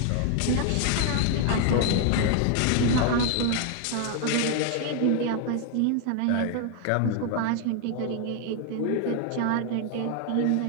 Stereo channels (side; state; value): both; different; correlation 0.00